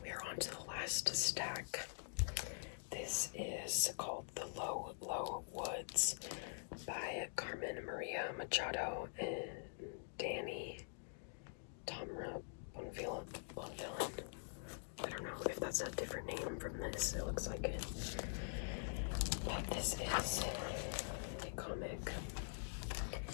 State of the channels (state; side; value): silent; right; digital silence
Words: We are on to the last stack. This is called The Low, Low Woods by Carmen Maria Machado and Danny Tamra Bonvillain. I don't know if that's a different name from this. It looks like it. But this is a comic.